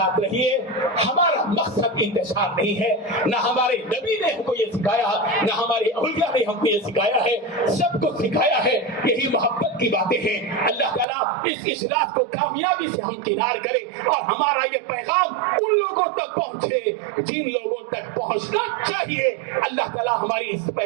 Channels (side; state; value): left; drops out; at 11.1 s